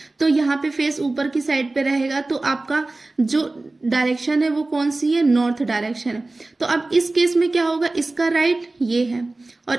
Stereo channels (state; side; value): quieter; left; 3.1 dB